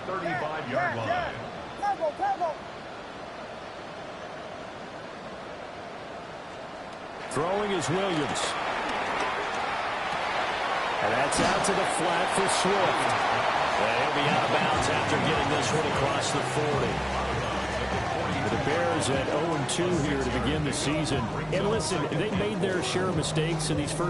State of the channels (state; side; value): identical; both; correlation 1.00